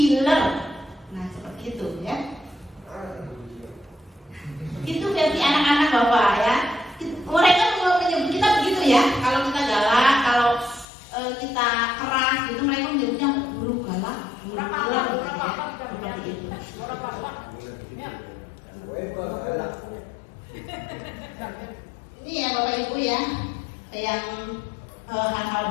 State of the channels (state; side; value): drops out; right; at 10.9 s